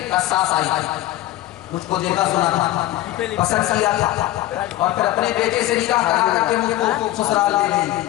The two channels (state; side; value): quieter; right; 15.2 dB